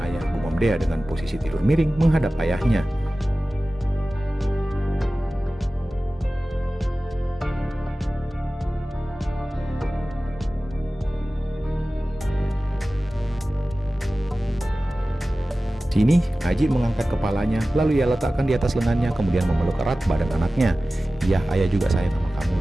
ayah, gumam Dea dengan posisi tidur miring menghadap ayahnya. Sini, Aji mengangkat kepalanya, lalu ia letakkan di atas lengannya, kemudian memeluk erat badan anaknya. Iya, ayah juga sayang sama kamu.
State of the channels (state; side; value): normal; both; correlation 0.96